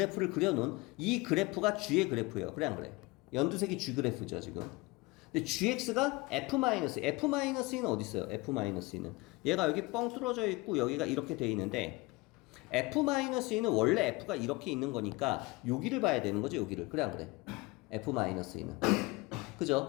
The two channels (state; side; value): quieter; right; 23.5 dB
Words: 그려놓은 이 그래프가 g의 그래프예요. 그래 안 그래? 연두색이 g 그래프죠 지금. 근데 gx가 f-는 어디 있어요? f-는 얘가 여기 뻥 뚫어져 있고 여기가 이렇게 돼 있는데 f-는 원래 f가 이렇게 있는 거니까 여기를 봐야 되는 거죠. 여기를. 그래 안 그래? f-는